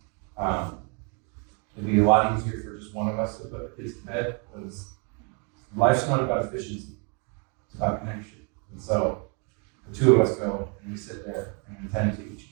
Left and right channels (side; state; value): left; quieter; 36.5 dB